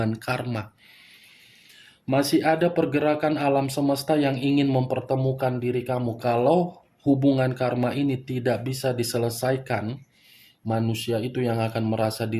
karma. Masih ada pergerakan alam semesta yang ingin mempertemukan diri kamu. Kalau hubungan karma ini tidak bisa diselesaikan, manusia itu yang akan merasa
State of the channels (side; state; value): both; identical; correlation 1.00